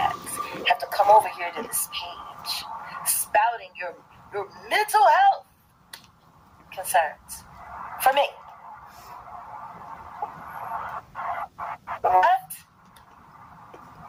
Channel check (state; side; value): identical; both; correlation 1.00